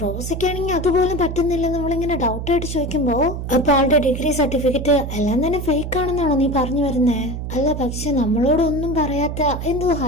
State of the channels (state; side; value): noise; right; hum, 5 dB below the sound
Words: റോസയ്ക്കാണെങ്കിൽ അതുപോലും പറ്റുന്നില്ല. നമ്മളിങ്ങനെ ഡൗട്ട് ആയിട്ട് ചോദിക്കുമ്പോ അപ്പൊ ആളുടെ ഡിഗ്രി സർട്ടിഫിക്കറ്റ് എല്ലാം തന്നെ ഫേക്ക് ആണെന്നാണോ നീ പറഞ്ഞു വരുന്നേ? അല്ല, പക്ഷെ നമ്മളോടൊന്നും പറയാത്ത എന്തോ